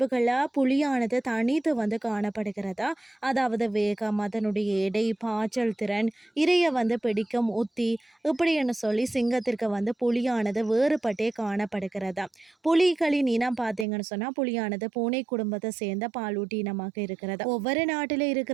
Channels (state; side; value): drops out; left; at 13.9 s